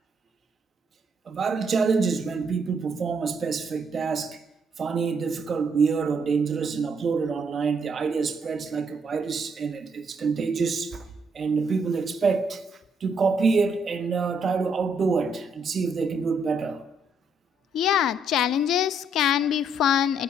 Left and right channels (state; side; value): normal; both; correlation 0.72